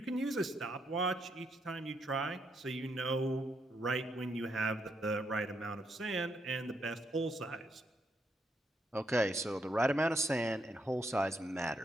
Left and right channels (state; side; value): normal; both; correlation 0.77